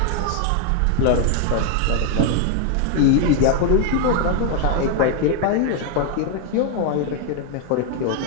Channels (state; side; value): different; both; correlation 0.00